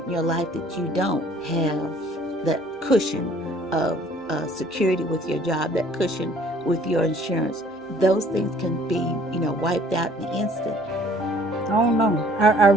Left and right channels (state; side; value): normal; both; correlation 0.56